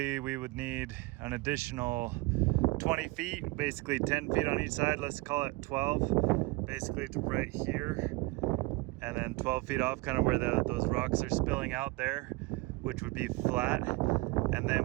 we would need an additional 20 feet, basically 10 feet on each side. Let's call it 12, basically to right here. And then 12 feet off, kind of where those rocks are spilling out there, which would be flat. And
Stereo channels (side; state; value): left; quieter; 23.1 dB